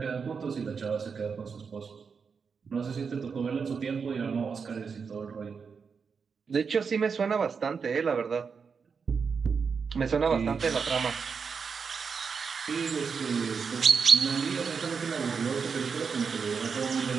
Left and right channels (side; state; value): left; quieter; 5.7 dB